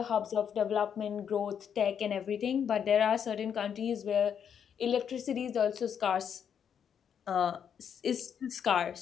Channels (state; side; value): quieter; right; 8.0 dB